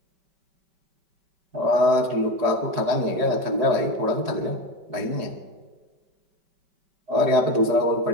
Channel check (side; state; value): left; late; 5.2 ms